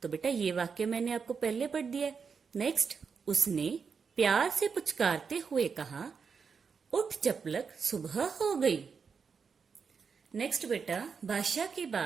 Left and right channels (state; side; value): quieter; left; 5.8 dB